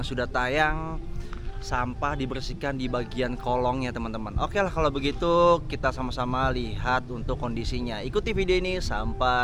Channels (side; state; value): both; identical; correlation 1.00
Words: sudah tayang sampah dibersihkan di bagian kolongnya teman-teman. Oke lah, kalau begitu kita sama-sama lihat untuk kondisinya. Ikuti video ini